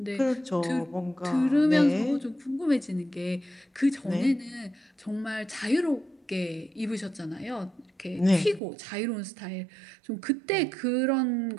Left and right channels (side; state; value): left; drops out; at 8.6 s